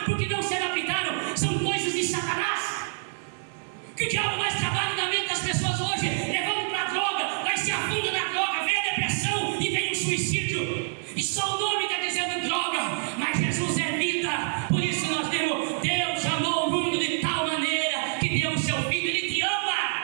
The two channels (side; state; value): left; silent; digital silence